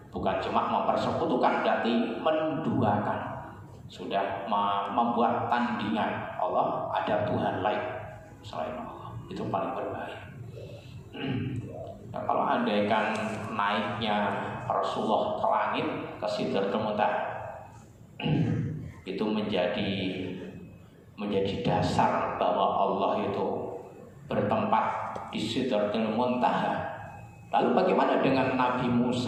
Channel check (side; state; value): both; identical; correlation 1.00